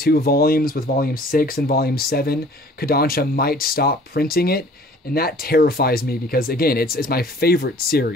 volumes, with Volume 6 and Volume 7, Kodansha might stop printing it, and that terrifies me because, again, it's my favorite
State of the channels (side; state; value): both; normal; correlation 0.51